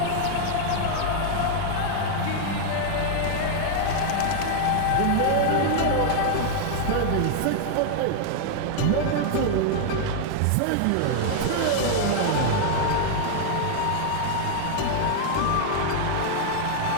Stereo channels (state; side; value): different; both; correlation 0.00